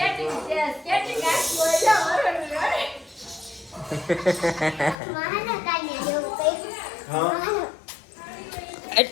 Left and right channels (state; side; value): drops out; right; at 5.0 s